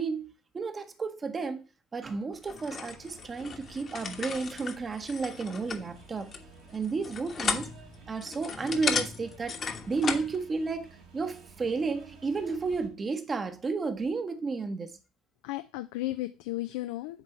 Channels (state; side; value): normal; both; correlation 0.75